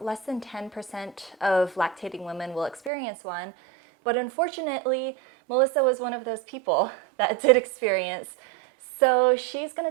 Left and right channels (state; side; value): drops out; left; at 2.9 s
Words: less than 10% of lactating women will experience one, but unfortunately, Melissa was one of those people that did experience. So she's going